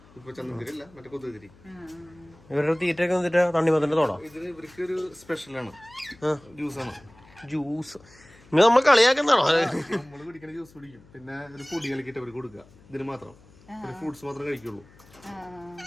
ഇവരുടെ തീറ്റൊക്കെ വന്നിട്ട് തണ്ണിമത്തന്റെ തോടാ? ഇതിന് ഇവർക്ക് ഒരു സ്പെഷ്യലാണ്. ജ്യൂസാണ്. ജ്യൂസ് നമ്മൾ കളിയാക്കുന്നതാണോ? നമ്മള് കുടിക്കണ ജ്യൂസ് കുടിക്കും. പിന്നെ ഒരു പൊടി കലക്കിട്ട് അവർക്ക് കൊടുക്കുക. ഇതിന് മാത്രം ഫ്രൂട്ട്സ് മാത്രം കഴിക്കുള്ളൂ.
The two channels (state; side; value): noise; left; hum, 26 dB below the sound